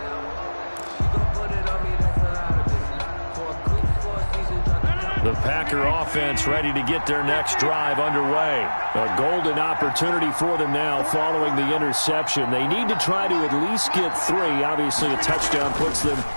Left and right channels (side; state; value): both; inverted; correlation -1.00